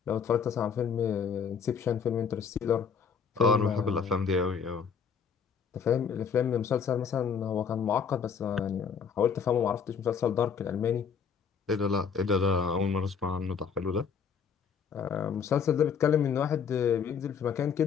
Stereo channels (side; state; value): right; quieter; 6.5 dB